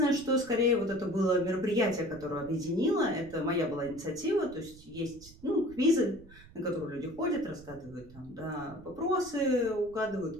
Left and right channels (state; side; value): noise; right; rumble, 21 dB below the sound